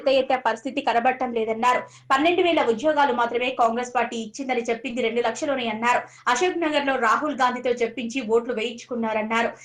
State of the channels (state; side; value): identical; both; correlation 1.00